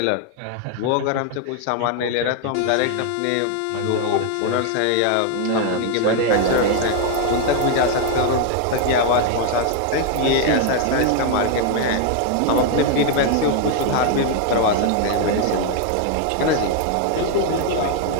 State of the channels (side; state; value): both; different; correlation 0.00